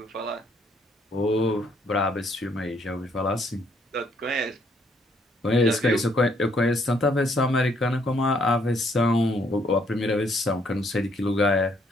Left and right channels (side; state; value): both; normal; correlation 0.68